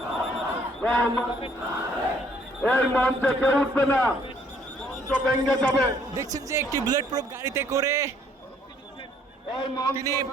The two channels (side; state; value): both; normal; correlation 0.63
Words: দেখছেন যে একটি বুলেট প্রুফ গাড়িতে করে তিনি